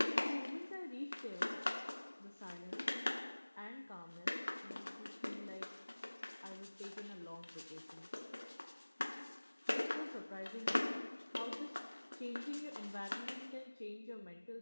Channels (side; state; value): both; inverted; correlation -1.00